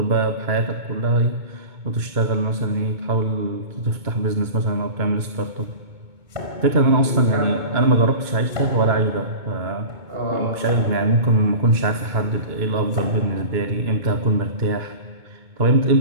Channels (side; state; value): left; late; 2.2 ms